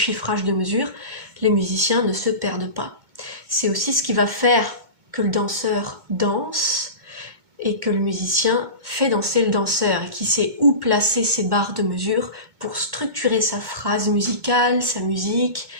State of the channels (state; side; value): late; left; 2.2 ms